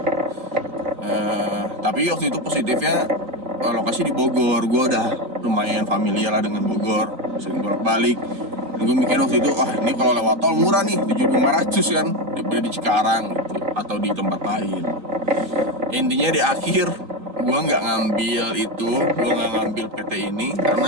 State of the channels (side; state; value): left; late; 4.0 ms